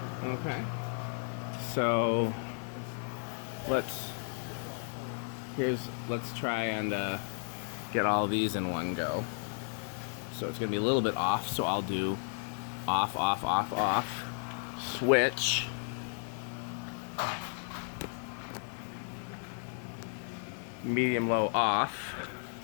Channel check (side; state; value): right; silent; 55 dB below the other